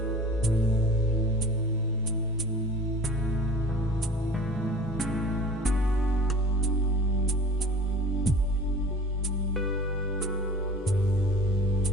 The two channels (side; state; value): both; normal; correlation 0.43